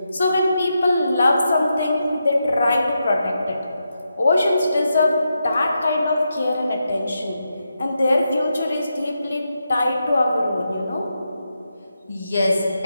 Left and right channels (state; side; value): inverted; both; correlation -0.85